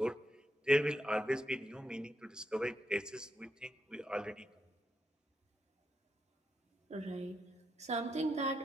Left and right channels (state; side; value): normal; both; correlation 0.82